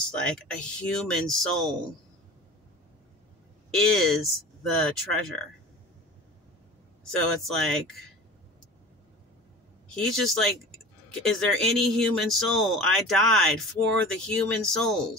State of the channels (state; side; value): normal; both; correlation 0.37